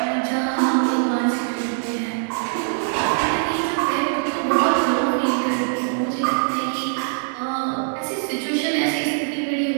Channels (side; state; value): left; silent; digital silence